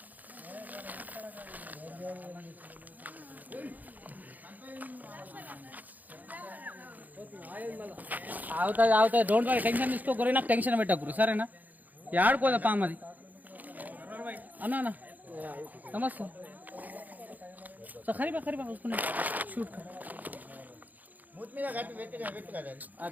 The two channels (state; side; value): late; left; 0.081 ms